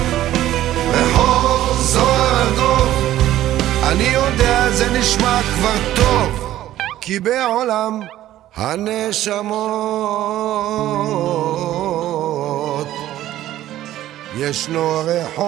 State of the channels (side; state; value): left; quieter; 13.6 dB